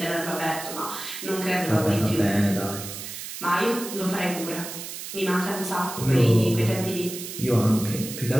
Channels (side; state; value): right; noise; hiss, 9 dB below the sound